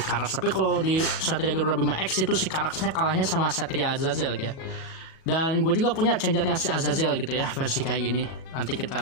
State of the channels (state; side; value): late; right; 36 ms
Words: Karax. Tapi kalau di Satria Garuda Bima X itu si Karaxnya kalahnya sama Satria Azazel ya. Dan gue juga punya changernya si Azazel gitu ya, versi kayak gini. Nanti kita